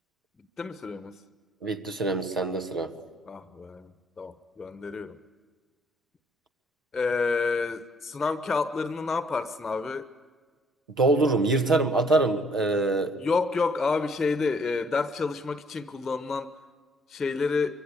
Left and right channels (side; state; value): both; normal; correlation 0.64